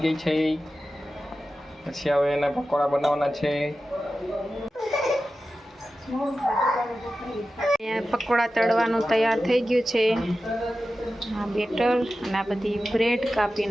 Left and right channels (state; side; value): normal; both; correlation 0.93